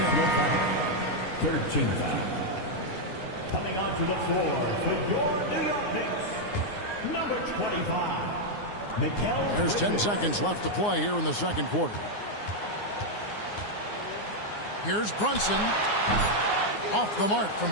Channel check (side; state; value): right; late; 9.6 ms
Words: 13 foul. Coming onto the floor for your New York Knicks, number 25. There's 10 seconds left to play here in the second quarter. Here's Brunson. Off the mark